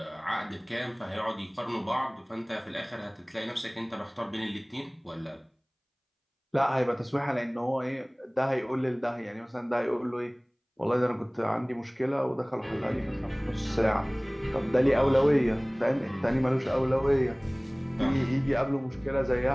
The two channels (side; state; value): both; identical; correlation 1.00